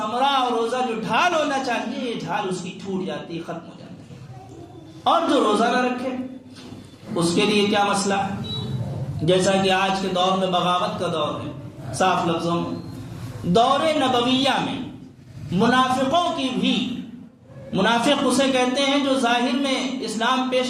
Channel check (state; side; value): identical; both; correlation 1.00